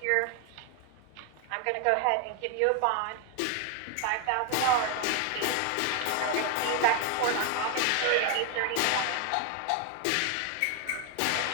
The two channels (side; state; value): both; different; correlation 0.01